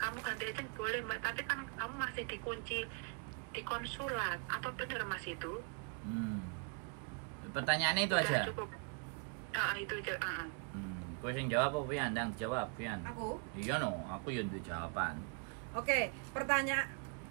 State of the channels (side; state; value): left; quieter; 36.8 dB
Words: ganti aja boleh Mbak, tapi kan kamu masih dikunci di konsulat. Apa benar Mas itu? Pertanyaannya itu udah aja. Cukup. Itu aja. Kowe sing jawab apa Pian? Ndang jawab Pian. Aku? Iya no, aku yo duwe jawaban. Oke,